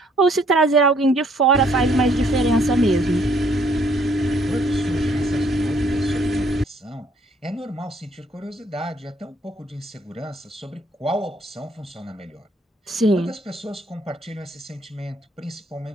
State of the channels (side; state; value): both; normal; correlation 0.64